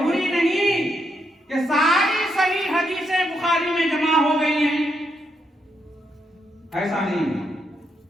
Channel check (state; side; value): normal; both; correlation 0.79